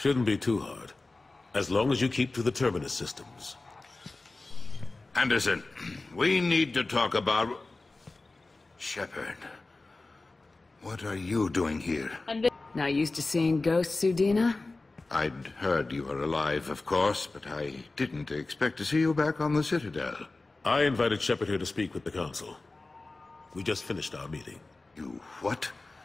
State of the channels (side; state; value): right; quieter; 3.3 dB